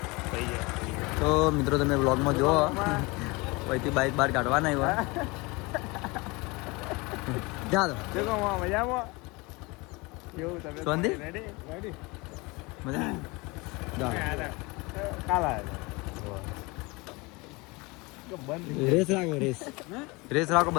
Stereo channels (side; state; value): right; quieter; 25.4 dB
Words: થઈ જાય. તો મિત્રો તમે બ્લોગમાં જુઓ અહીંથી બાઇક બહાર કાઢવાના આવ્યા. ચાલો મજામાં શાંતિ રેસ રાખો